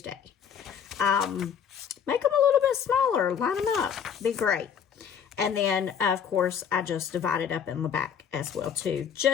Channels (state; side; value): quieter; right; 7.8 dB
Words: Make them a little bit smaller. Line them up. Be great. And then, of course, I just divide it up in the back as well, too,